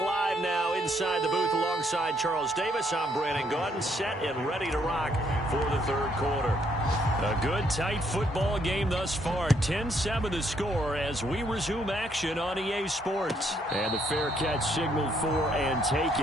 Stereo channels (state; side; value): normal; both; correlation 0.71